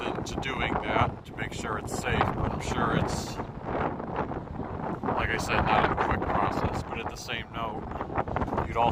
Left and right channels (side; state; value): both; identical; correlation 1.00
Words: into doing that to make sure it's safe, but I'm sure it's, like I said, not a quick process. But at the same note, you'd